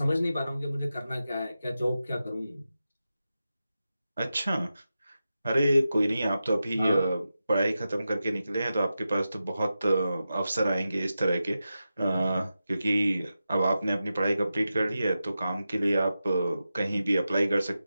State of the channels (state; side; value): inverted; both; correlation -0.91